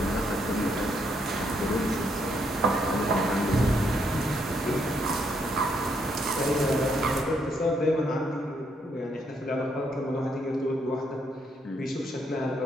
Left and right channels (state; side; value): normal; both; correlation 0.74